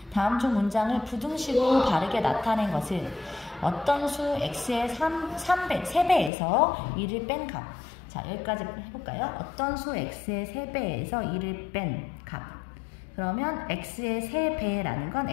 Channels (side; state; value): right; drops out; at 6.3 s